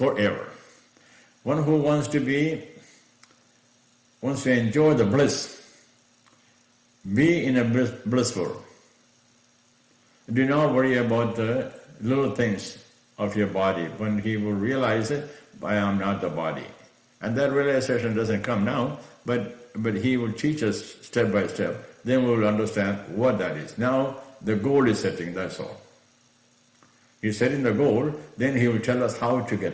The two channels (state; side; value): identical; both; correlation 1.00